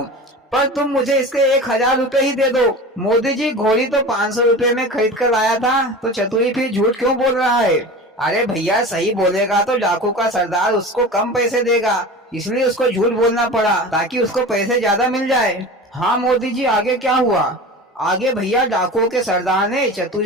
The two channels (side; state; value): both; normal; correlation 0.33